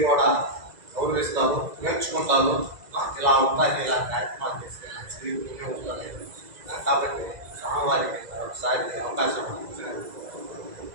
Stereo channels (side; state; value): left; late; 2.0 ms